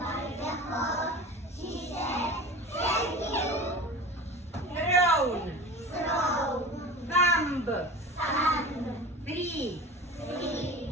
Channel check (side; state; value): both; normal; correlation 0.34